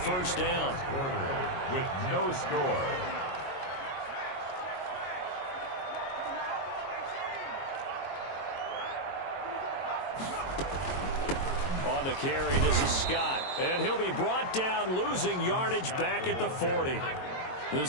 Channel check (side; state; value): right; late; 22 ms